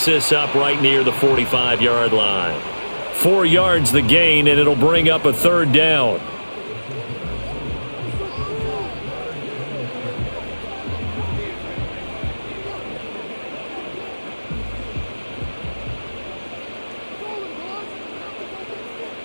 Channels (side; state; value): both; inverted; correlation -1.00